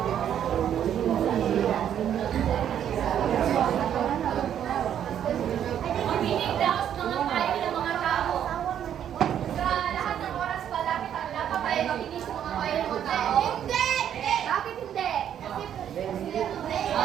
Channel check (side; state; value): left; quieter; 9.7 dB